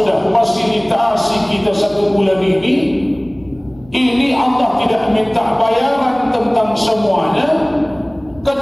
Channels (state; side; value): noise; left; hum, 25 dB below the sound